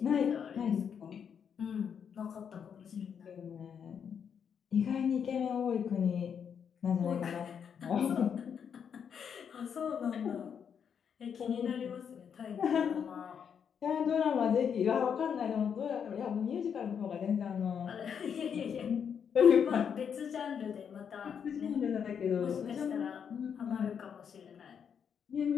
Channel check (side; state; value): right; quieter; 7.5 dB